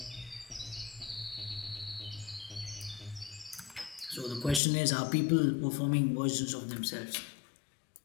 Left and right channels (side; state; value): right; drops out; at 4.6 s